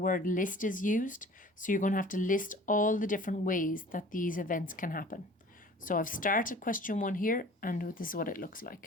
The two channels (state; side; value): normal; both; correlation 0.46